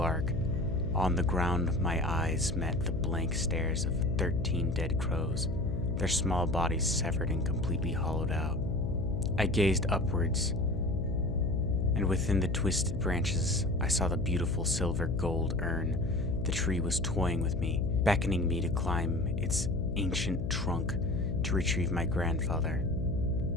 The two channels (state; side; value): noise; left; hum, 1 dB below the sound